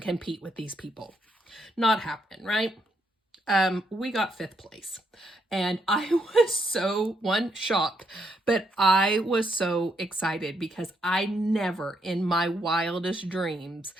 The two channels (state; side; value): normal; both; correlation 0.76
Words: compete with these people. Not happening, right? We got 5th place, and I was so shocked, but I was so excited because I never in my wildest dreams